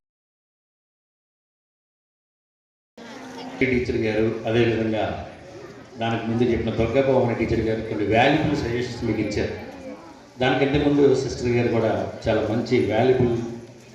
Teacher గారు, అదేవిధంగా దానికి ముందు చెప్పిన దుర్గాభవన టీచర్ గారు కొన్ని వాల్యుబుల్ సజెషన్స్ మీకు ఇచ్చారు. దానికంటే ముందు సిస్టర్ గారు కూడా చాలా మంచి వాల్యుబుల్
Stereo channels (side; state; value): both; identical; correlation 1.00